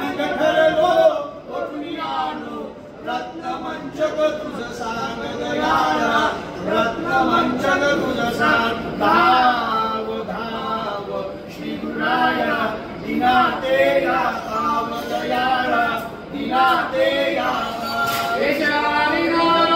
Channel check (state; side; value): identical; both; correlation 1.00